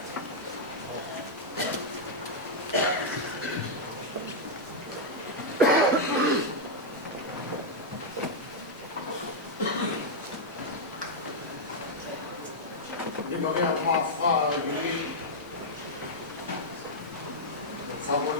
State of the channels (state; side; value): normal; both; correlation -0.04